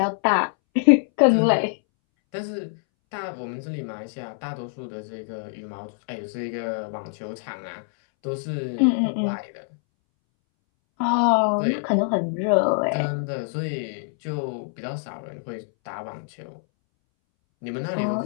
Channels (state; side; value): silent; right; 62 dB below the other